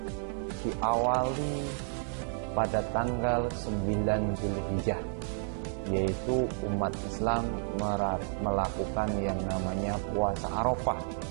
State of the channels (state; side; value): silent; left; 57 dB below the other